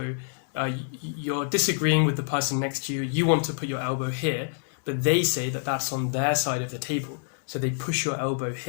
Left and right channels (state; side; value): silent; right; digital silence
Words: you're disagreeing with the person next to you. You want to put your elbow here, but they say that that's on their side of the table. So they push your elbow